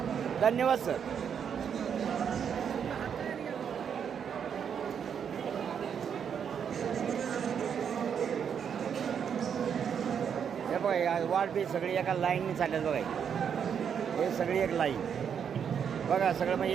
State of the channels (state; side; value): quieter; left; 7.7 dB